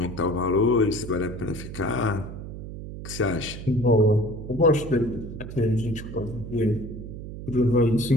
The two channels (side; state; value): right; noise; hum, 10 dB below the sound